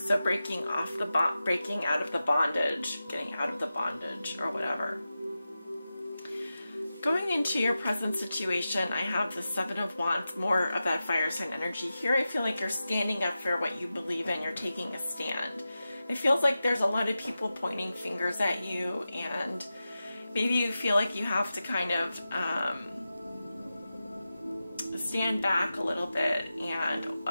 So breaking out of the bondage, getting out of the bondage or whatever. Going into your present situation, I have the Seven of Wands, more of that fire sign energy. Here I feel like you're standing up for what you believe in. You're taking a stand. It feels like there's a lot of people pointing fingers at you, and maybe you feel like you have to kind of stand back a little bit and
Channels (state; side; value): inverted; both; correlation -0.93